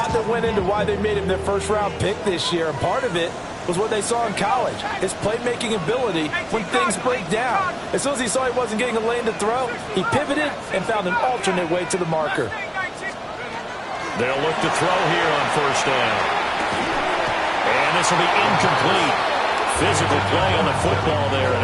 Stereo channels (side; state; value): both; identical; correlation 1.00